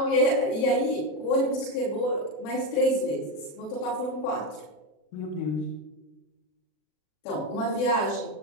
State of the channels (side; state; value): right; late; 40 ms